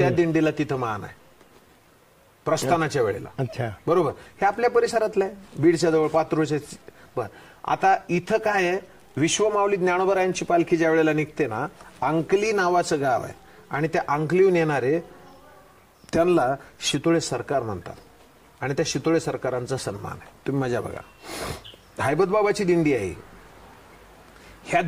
दिंडीला तिथं मान आहे. प्रस्थानाच्या वेळेला. अच्छा, बरोबर. हे आपल्या परिसरातलं आहे, बीडच्या जवळ, पात्रोच्या. बर, आता इथं काय आहे, विश्वमाऊली ज्ञानोबरायांची पालखी ज्या वेळेला निघते ना, अंकली नावाचं गाव आहे आणि त्या अंकलीहून येणारे त्यांना शितोळे सरकार म्हणतात आणि त्या शितोळे सरकारांचा सन्मान आहे. तुम्ही मजा बघा. हैबतबाबाची दिंडी आहे. ह्या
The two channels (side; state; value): both; identical; correlation 1.00